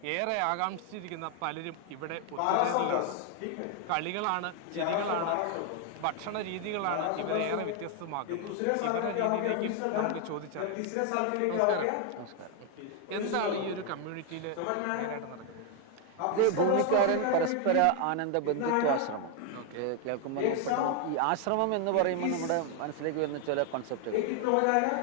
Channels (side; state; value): both; different; correlation 0.00